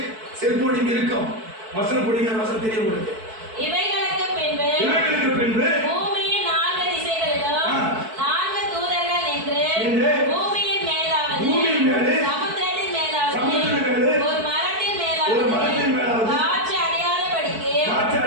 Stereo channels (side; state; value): left; late; 4.6 ms